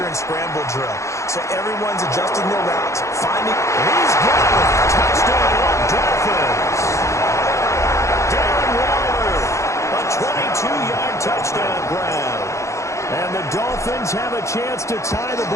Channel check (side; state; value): right; late; 0.14 ms